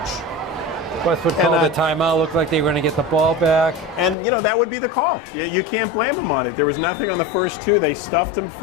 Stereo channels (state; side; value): drops out; right; at 4.2 s